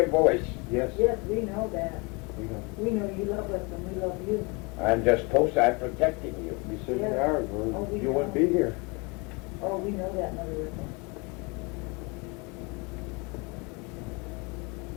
voice. Yes. Yes, we know that. We know. We know you love us and we love you. I'm just I'm protecting you. You certainly Yes. are, or Oh, we you wouldn't know. be here. Oh, we know that, Mother Riffle.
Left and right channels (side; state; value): right; quieter; 29.4 dB